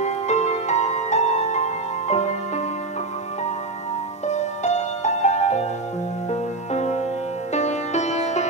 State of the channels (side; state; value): left; quieter; 3.2 dB